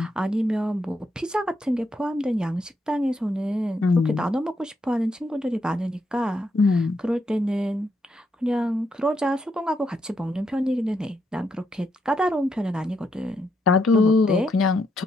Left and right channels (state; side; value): normal; both; correlation 0.78